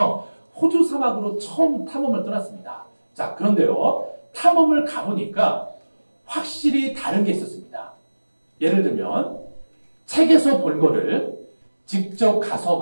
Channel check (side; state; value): both; inverted; correlation -1.00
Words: 호주 사막으로 처음 탐험을 떠났습니다. 자, 그런데요, 탐험을 가보니까 확실히 다른 게 있었습니다. 예를 들면 책에서 본 거를 직접 가서